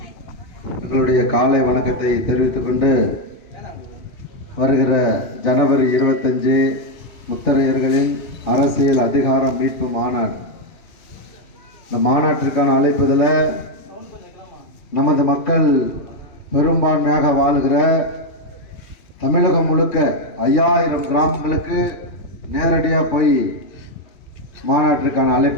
எங்களுடைய காலை வணக்கத்தை தெரிவித்துக் கொண்டு, வருகிற ஜனவரி 25 முத்தரையர்களின் அரசியல் அதிகாரம் மீட்பு மாநாடு. இந்த மாநாட்டிற்கான அழைப்புதல நமது மக்கள் பெரும்பான்மையாக வாழுகிற தமிழகம் முழுக்க 5000 கிராமங்களுக்கு நேரடியாக போய் மாநாட்டிற்கான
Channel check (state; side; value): late; right; 2.8 ms